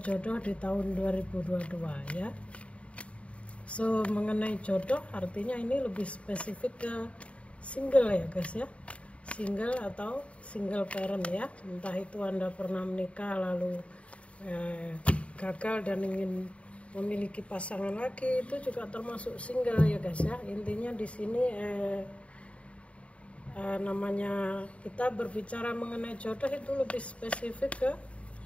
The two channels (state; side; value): late; right; 0.063 ms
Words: jodoh di tahun 2022 ya. So mengenai jodoh artinya ini lebih spesifik ke single ya guys ya, single atau single parent ya, entah itu Anda pernah menikah lalu gagal dan ingin memiliki pasangan lagi, itu juga termasuk single ya guys ya. Intinya di sini namanya kita berbicara mengenai jodoh itu lebih spesifik ke